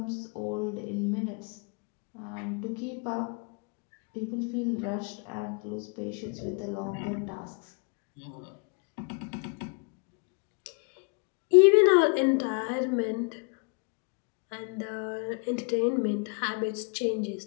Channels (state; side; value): quieter; right; 35.1 dB